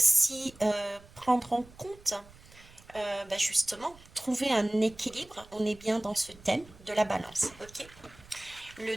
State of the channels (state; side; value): noise; right; rumble, 23 dB below the sound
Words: prendre en compte, justement, trouver un équilibre. On est bien dans ce thème de la balance. Ok. Le